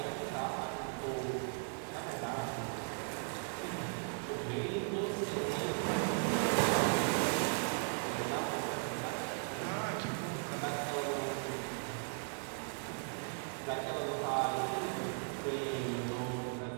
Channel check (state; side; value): silent; left; 53 dB below the other